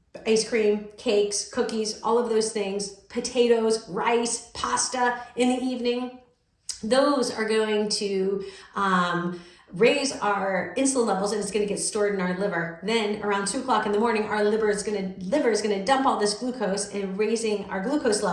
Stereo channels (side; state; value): both; identical; correlation 1.00